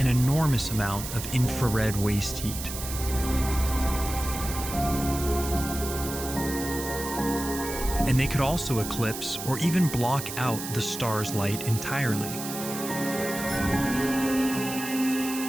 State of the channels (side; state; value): right; noise; hiss, 8 dB below the sound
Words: enormous amount of infrared waste heat. And they could also eclipse or even block out the star's light entirely.